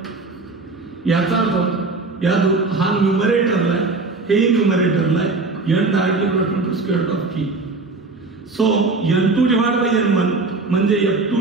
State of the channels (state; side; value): quieter; left; 3.6 dB